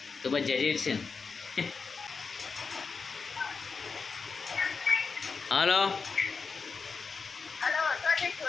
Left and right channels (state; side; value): quieter; right; 4.9 dB